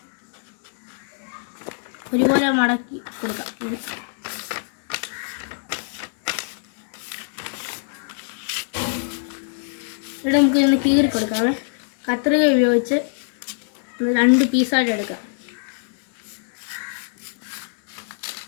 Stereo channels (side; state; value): right; silent; digital silence